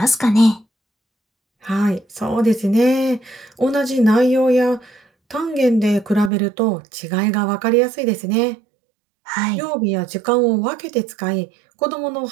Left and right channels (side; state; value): left; drops out; at 6.3 s